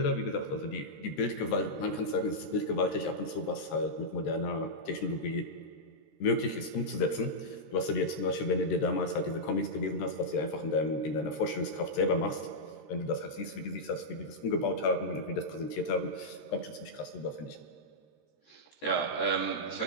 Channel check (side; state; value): right; late; 14 ms